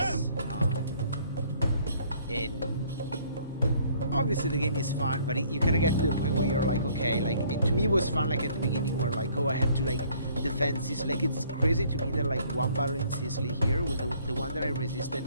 And obviously the game is fun, but you kind of get to the point where you're like, okay, like to me it was fun, like at the beginning where like, oh, I had to like defend Sicily. Like it's crazy to me that like one battle in Sicily here was the one that I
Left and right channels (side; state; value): both; inverted; correlation -0.60